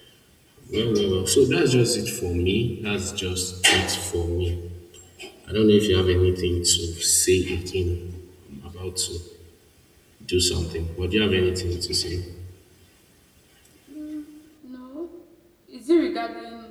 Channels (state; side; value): identical; both; correlation 1.00